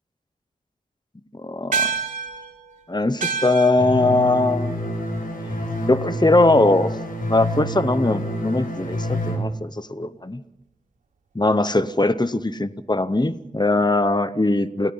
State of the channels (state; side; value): normal; both; correlation 0.70